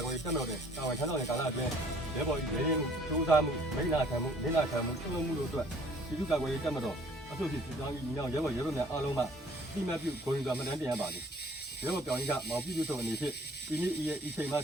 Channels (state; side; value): normal; both; correlation 0.57